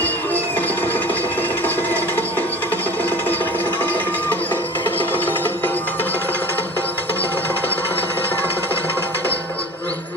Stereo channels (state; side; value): normal; both; correlation 0.40